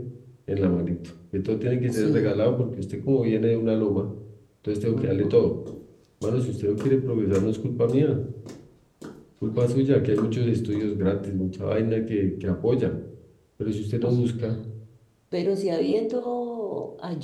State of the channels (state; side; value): identical; both; correlation 1.00